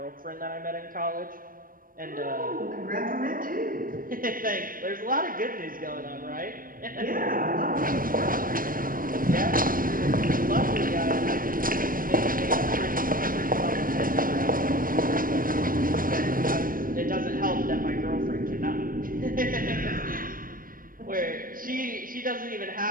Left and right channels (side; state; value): left; late; 0.41 ms